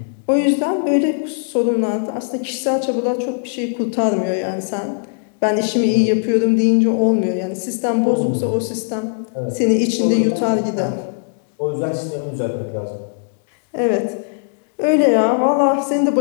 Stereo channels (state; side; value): silent; right; digital silence